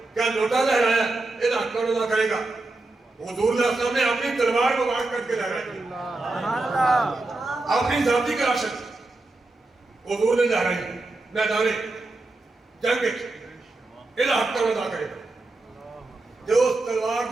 کیا لوٹا لہرایا یہ حق کون ادا کرے گا؟ حضور صلی اللہ علیہ وسلم نے اپنی تلوار کو واقع کر کے لہرائی، اپنی ذاتی کراشت حضور نے لہرائی میدان جنگ الہ حق کا ادا کرے جو اس تلوار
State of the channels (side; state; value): left; quieter; 3.1 dB